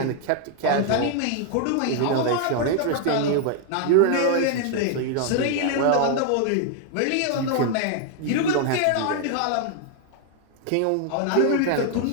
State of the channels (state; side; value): different; both; correlation 0.00